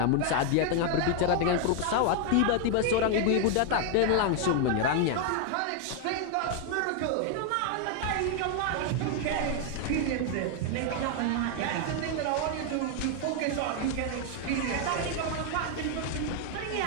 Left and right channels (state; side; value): different; both; correlation 0.01